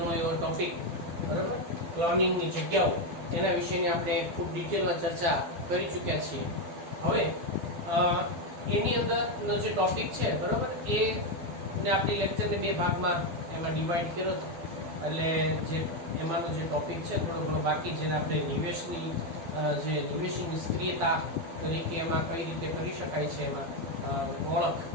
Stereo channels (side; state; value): left; late; 12 ms